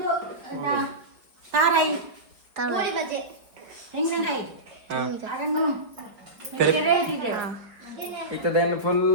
ತಾರಾಯಿ ಗೋಳಿ ಬಜೆ ತೆಂಗಿನಕಾಯಿ ಅದನ್ನು ಇತ್ತದೇನು ಫುಲ್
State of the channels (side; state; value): left; late; 4.6 ms